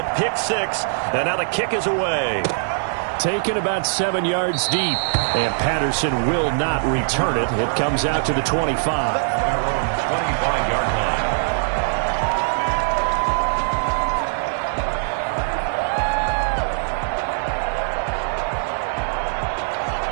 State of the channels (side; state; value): left; silent; 63 dB below the other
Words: pick 6, and now the kick is away. Taken about 7 yards deep, and Patterson will not return it. It comes out to the 25. 25-yard line.